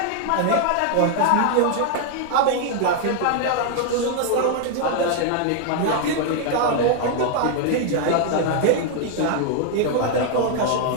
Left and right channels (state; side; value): different; both; correlation 0.00